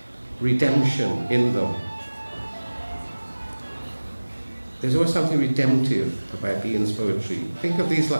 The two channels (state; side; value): inverted; both; correlation -1.00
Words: redemption in them. There's always something redemptive about Ian's poetry. Think of these